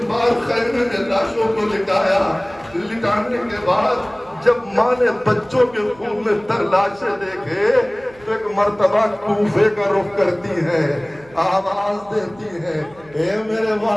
بار خیمے نے لاشوں کو لٹایا۔ لٹانے کے بعد جب ماں نے بچوں کے خون میں تر لاشیں دیکھے تو ایک مرتبہ کوفے کا رخ کرتی ہے، آواز دیتی ہے، اے میرے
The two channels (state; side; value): noise; right; hum, 25 dB below the sound